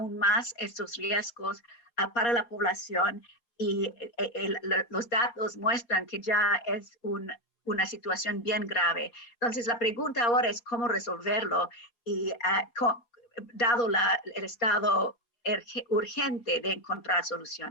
más estos riesgos para la población y los datos muestran que ya es una situación bien grave. Entonces la pregunta ahora es cómo resolverlo y dado el estado urgente de encontrar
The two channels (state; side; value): late; right; 4.3 ms